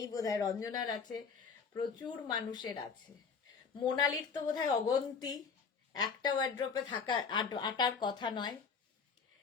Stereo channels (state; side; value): quieter; right; 5.6 dB